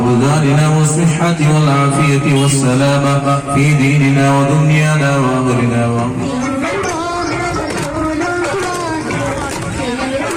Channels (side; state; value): both; identical; correlation 1.00